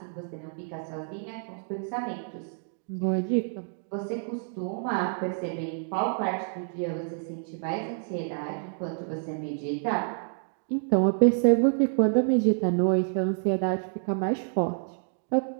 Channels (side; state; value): left; silent; digital silence